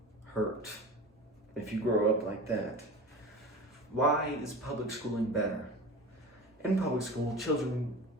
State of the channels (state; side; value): normal; both; correlation 0.33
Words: hurt if you grow up like that. Why is public schooling better? In public school, children